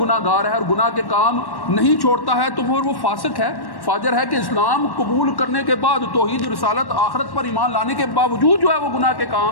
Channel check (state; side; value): late; right; 1.1 ms